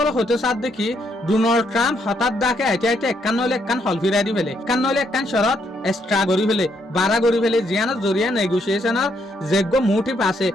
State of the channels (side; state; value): both; normal; correlation 0.74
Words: হতে সার দেখি ডোনাল্ড ট্রাম্প হঠাৎ ডাকে আইতে আইতে একখান নইলে একখান হল ফিরাই দি ফেলে একখান নইলে একখান শরত এক্সট্রা করি ফেলে বাড়া করি ফেলে জিয়ানোর জরিয়া নেগোসিয়েশনের যোগ্য মোটিভ আছে